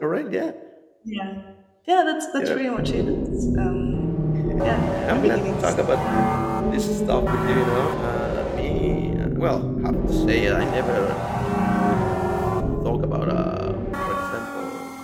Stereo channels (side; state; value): both; identical; correlation 1.00